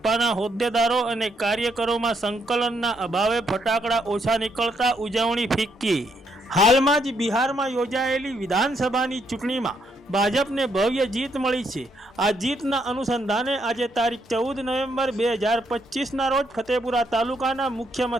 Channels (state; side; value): normal; both; correlation 0.75